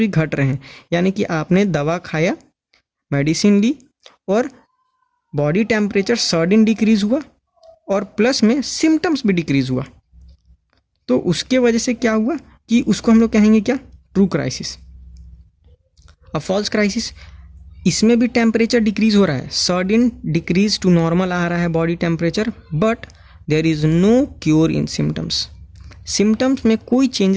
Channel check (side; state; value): both; identical; correlation 1.00